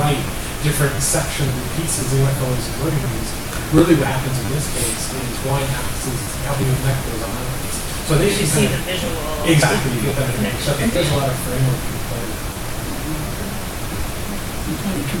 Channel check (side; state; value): both; identical; correlation 1.00